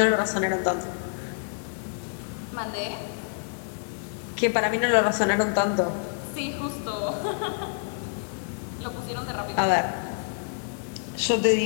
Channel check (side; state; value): right; silent; 60 dB below the other